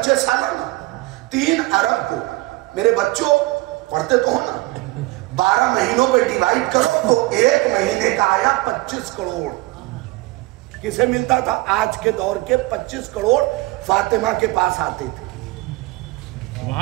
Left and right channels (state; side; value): quieter; left; 21.1 dB